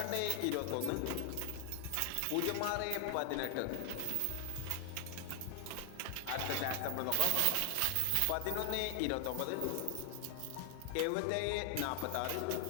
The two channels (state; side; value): different; both; correlation 0.00